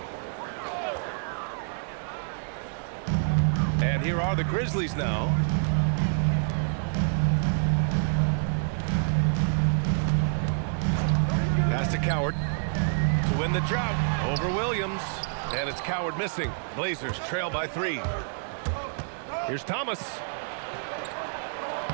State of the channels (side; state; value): left; silent; digital silence